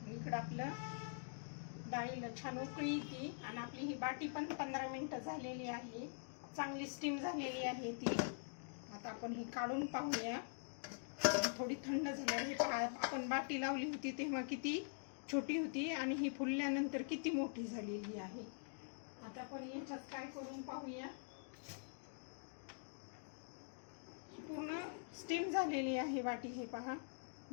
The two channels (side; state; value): right; silent; digital silence